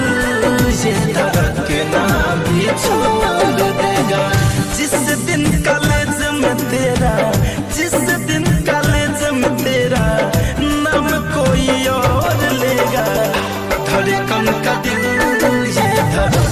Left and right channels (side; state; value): both; identical; correlation 1.00